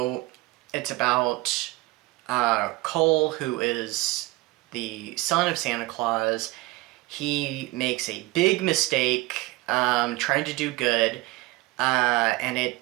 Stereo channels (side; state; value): left; quieter; 20.3 dB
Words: it's about Cole, who is the son of Santa Claus. He makes a big mistake trying to do good, and it